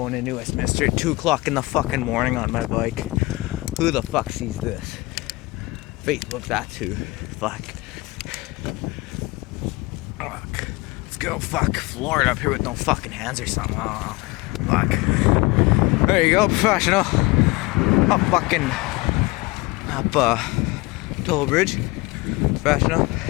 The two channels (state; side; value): quieter; right; 22.7 dB